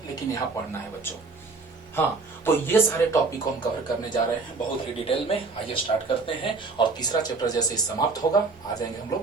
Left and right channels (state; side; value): quieter; left; 4.0 dB